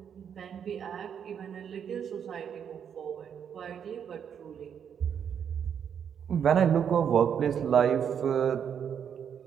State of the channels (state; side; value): quieter; left; 8.0 dB